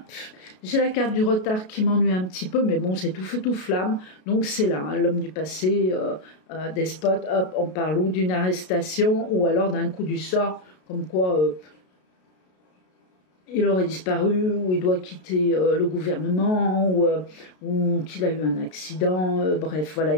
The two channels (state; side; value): late; right; 33 ms